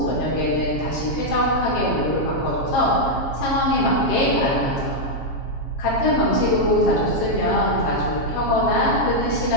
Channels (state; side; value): late; right; 7.4 ms